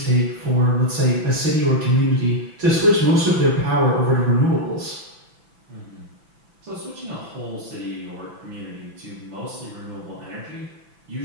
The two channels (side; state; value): left; late; 6.0 ms